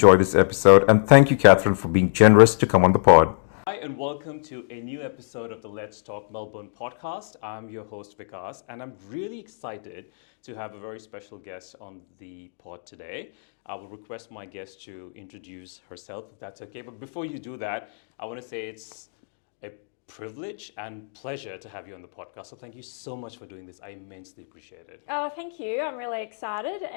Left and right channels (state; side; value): silent; right; digital silence